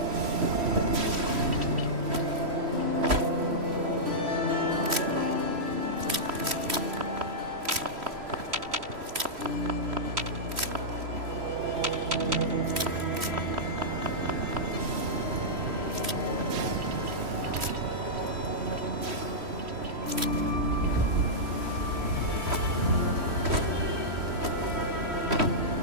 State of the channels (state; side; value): late; left; 3.1 ms